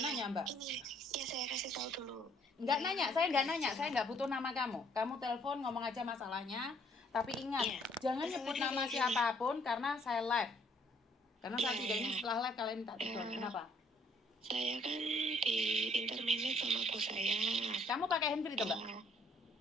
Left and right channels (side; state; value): both; normal; correlation 0.64